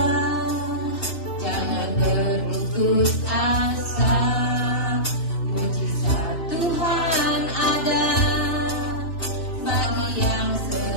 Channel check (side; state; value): right; late; 2.7 ms